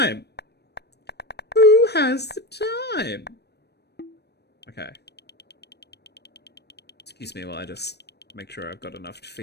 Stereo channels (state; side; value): late; right; 0.48 ms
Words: Who has the time? Okay. Excuse me while I just make sure I've got enough to